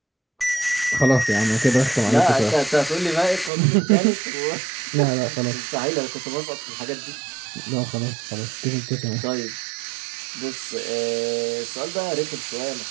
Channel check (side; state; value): left; drops out; at 3.5 s